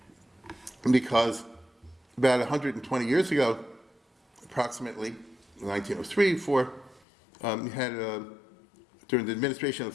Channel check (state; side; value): drops out; right; at 7.0 s